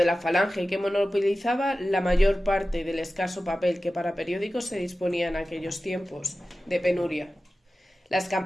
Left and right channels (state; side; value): normal; both; correlation 0.95